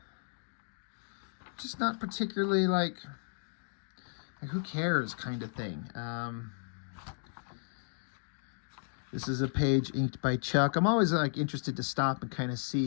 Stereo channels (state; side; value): silent; right; digital silence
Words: Just not particularly like who cares kind of thing. This is a page inked by Chuck. I'm always like interested to stop and kind of